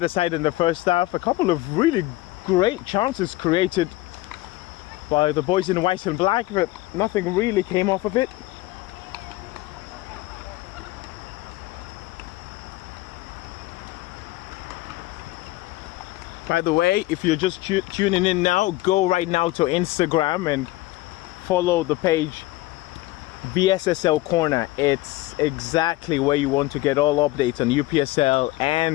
side in the first half. A couple of really great chances created by the boys in white and black, but nothing really came off of it. By the way, if you're just tuning in now, go right now to Instagram and follow the page VSSL Corner. It's exactly where you want to get all updates on UPSL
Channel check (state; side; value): quieter; right; 18.1 dB